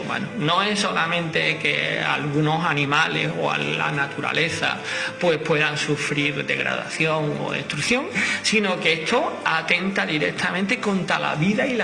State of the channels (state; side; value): identical; both; correlation 1.00